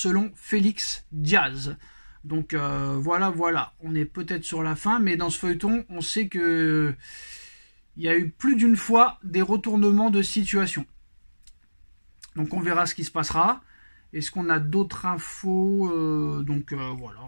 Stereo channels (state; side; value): inverted; both; correlation -1.00